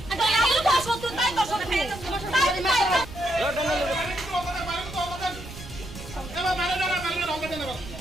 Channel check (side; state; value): right; noise; rumble, 13 dB below the sound